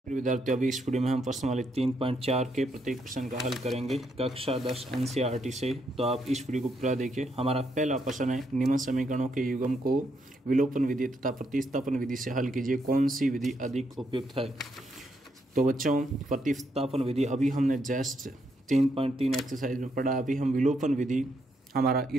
विद्यार्थियों, अभी इस वीडियो में हम प्रश्नावली 3.4 के प्रत्येक प्रश्न का हल करेंगे कक्षा 10 एनसीईआरटी से। तो आप इस वीडियो को पूरा देखिए। हमारा पहला प्रश्न है, निम्न समीकरणों के युग्म को विलोपन विधि तथा प्रतिस्थापन विधि से हल कीजिए, कौन सी विधि अधिक उपयुक्त है। तो बच्चों, प्रतिस्थापन विधि अभी हमने जस्ट 3.3 एक्सरसाइज में पढ़ा। अभी हम विलोपन विधि, हमारा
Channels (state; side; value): normal; both; correlation 0.77